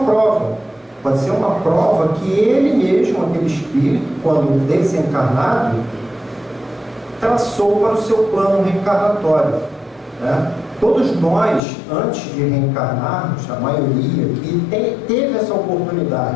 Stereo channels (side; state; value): right; drops out; at 11.6 s